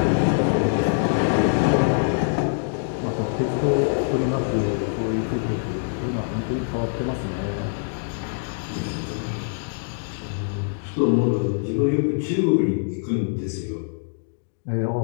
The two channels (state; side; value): silent; right; digital silence